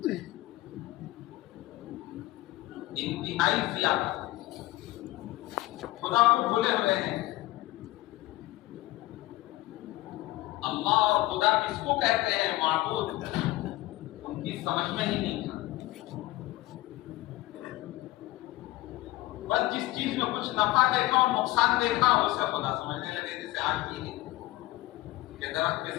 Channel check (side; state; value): right; quieter; 18.2 dB